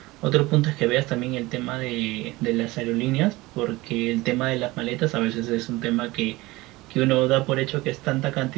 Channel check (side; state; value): left; quieter; 20.6 dB